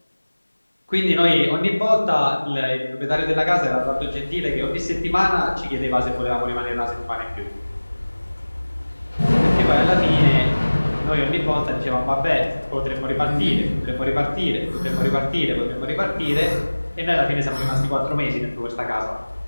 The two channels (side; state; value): both; inverted; correlation -1.00